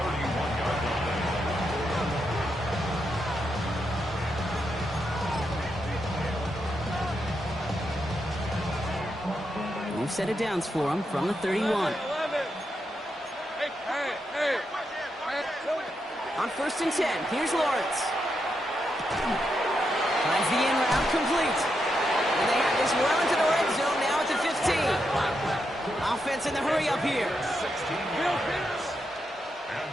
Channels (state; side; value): normal; both; correlation 0.83